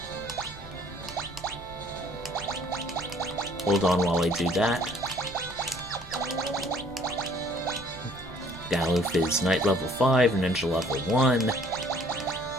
Hold on while I do that. Galuf is Knight level 5, Ninja level 1.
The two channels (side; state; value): both; normal; correlation 0.58